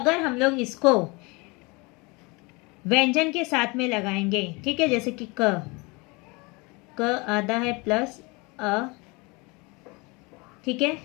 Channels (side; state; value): right; quieter; 27.1 dB